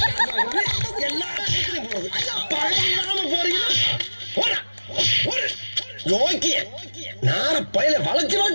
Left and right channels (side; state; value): both; inverted; correlation -1.00